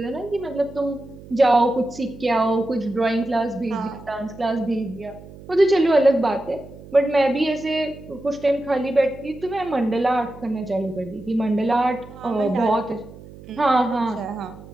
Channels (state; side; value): noise; right; hum, 18 dB below the sound